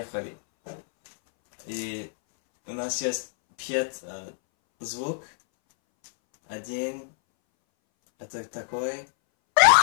И у нас есть 5 звук. Один, это такой.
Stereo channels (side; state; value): right; silent; 61 dB below the other